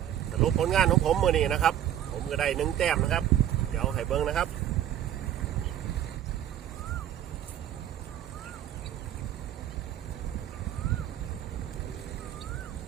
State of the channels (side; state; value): left; quieter; 11.2 dB